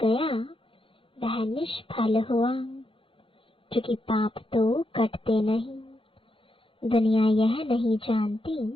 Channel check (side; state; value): right; late; 0.25 ms